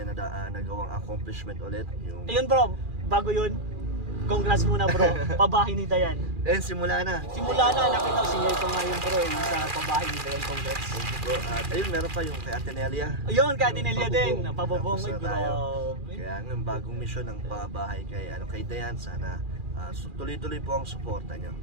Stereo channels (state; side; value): late; left; 2.4 ms